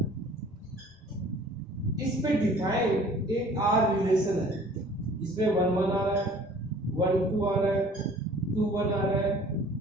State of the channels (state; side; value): normal; both; correlation 0.50